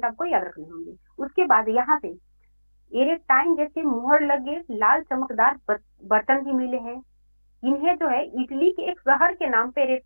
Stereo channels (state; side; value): inverted; both; correlation -1.00